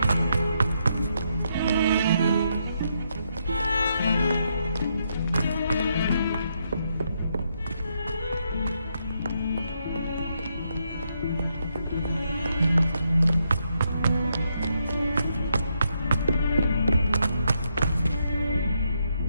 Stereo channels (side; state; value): both; inverted; correlation -0.79